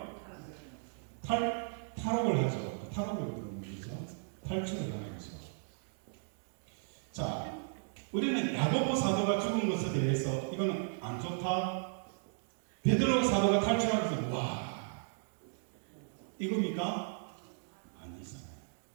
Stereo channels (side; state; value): left; silent; digital silence